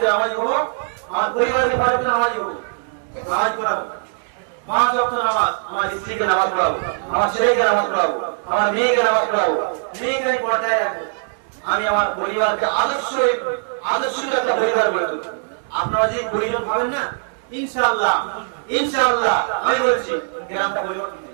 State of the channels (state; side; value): silent; left; digital silence